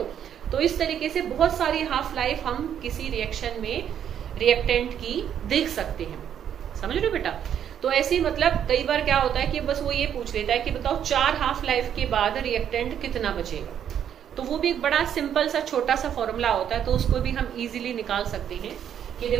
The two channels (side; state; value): left; quieter; 9.3 dB